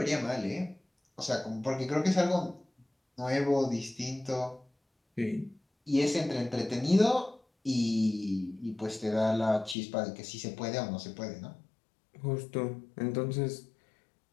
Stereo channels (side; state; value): right; drops out; at 9.8 s